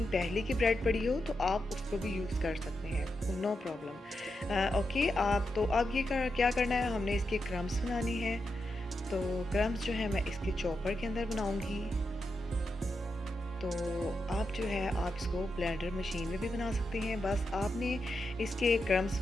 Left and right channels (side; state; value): both; normal; correlation 0.86